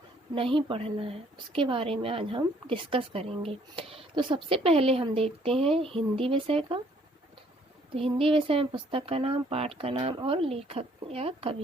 नहीं पढ़ना है, उसके बारे में आज हम डिस्कस करेंगे। तो सबसे पहले हम देखते हैं हिंदी विषय का। तो हिंदी विषय में पुस्तक का नाम, पाठ का नाम और लेखक या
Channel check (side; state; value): both; normal; correlation 0.63